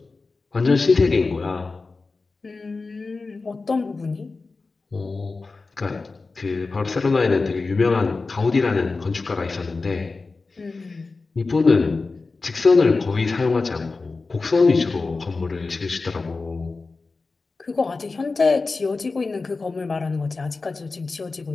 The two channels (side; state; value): right; quieter; 3.9 dB